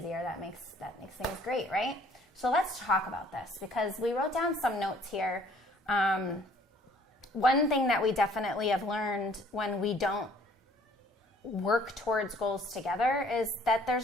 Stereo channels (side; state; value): both; normal; correlation 0.58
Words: that makes things great, right? So let's talk about this because we wrote down some notes here. One thing that we definitely have learned when we don't work towards goals together is that there's